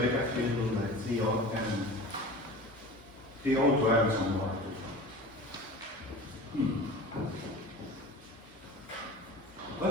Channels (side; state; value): both; normal; correlation 0.36